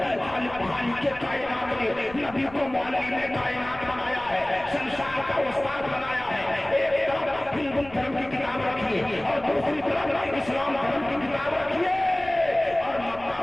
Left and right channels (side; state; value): left; noise; rumble, 20 dB below the sound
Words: खालिक के कायनात ने नबी को मुअल्लिमे कायनात बनाया है, संसार का उस्ताद बनाया है। एक तरफ हिंदू धर्म की किताब रखिए और दूसरी तरफ इस्लाम धर्म की किताब रखिए और मक्का